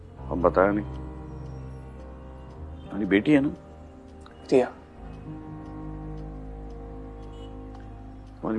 अब बताया नहीं। तुम्हारी बेटी है ना? रिया। तुम्हारी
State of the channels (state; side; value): identical; both; correlation 1.00